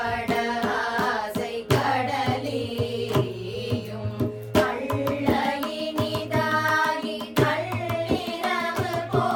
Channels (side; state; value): both; identical; correlation 1.00